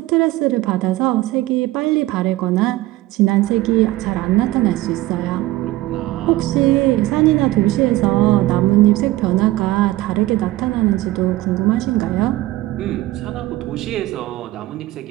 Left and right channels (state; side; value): quieter; left; 17.3 dB